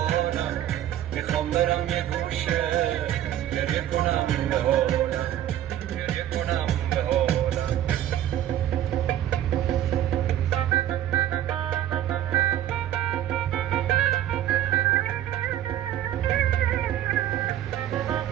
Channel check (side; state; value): left; quieter; 11.9 dB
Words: میخوام برم یه گوشه گریه کنم به حالم، گریه کنم به حالم.